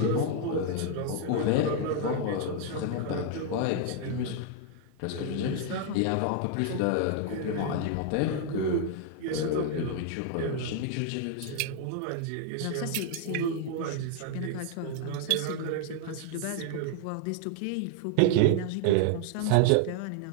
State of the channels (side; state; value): both; different; correlation 0.00